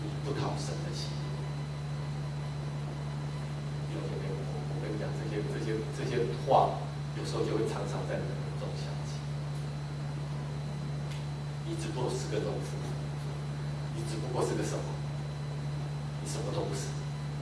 你不讨神的喜悦。弟兄姐妹，我跟你讲，这些话，有时候就会常常在你的耳中响起。你只不过是个农夫，你只不过是个什么？你什么都不是，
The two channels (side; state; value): both; identical; correlation 1.00